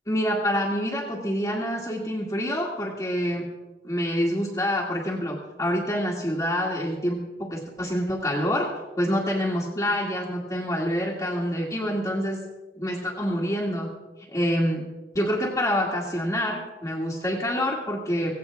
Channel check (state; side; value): normal; both; correlation 0.68